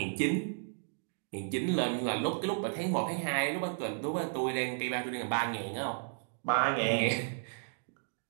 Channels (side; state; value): left; silent; digital silence